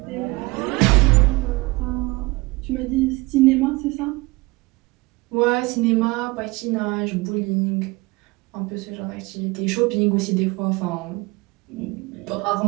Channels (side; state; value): left; quieter; 23.6 dB